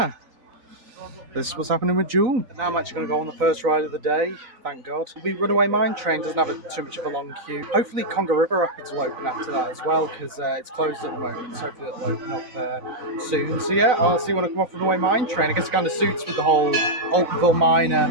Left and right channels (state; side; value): late; left; 4.0 ms